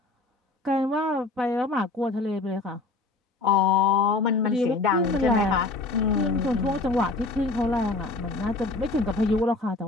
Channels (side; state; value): right; quieter; 3.4 dB